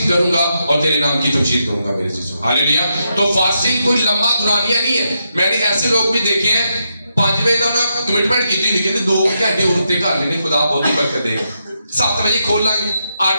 کروں گا اور تیرے نام کی تمجید کروں گا میرے چیزوں. ہاللیلویا. تو فاسٹنگ کوئی لمبا دورانیہ نہیں ہے. میں نے ایسے لوگ بھی دیکھے ہیں 5 بجے کا انہوں کمٹمنٹ کی تھی, کہتے 2 گھنٹے اور رکتے کر لینے, خدا بہت ہی برکت دے گا. 7 بجے کھول لیں گے, 8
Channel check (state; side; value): inverted; both; correlation -0.83